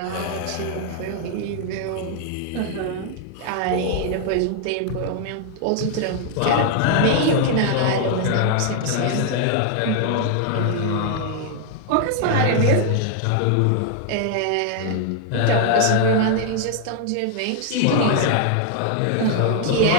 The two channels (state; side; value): different; both; correlation 0.00